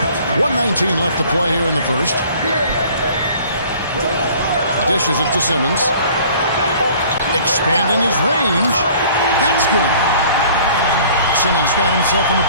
1:19 left to play here in the first. Dishes it to Simmons. Expanding his range. That's good. Simmons got himself on the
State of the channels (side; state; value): both; inverted; correlation -0.51